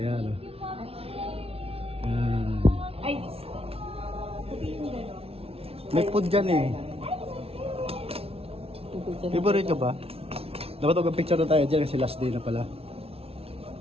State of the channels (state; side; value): late; left; 0.28 ms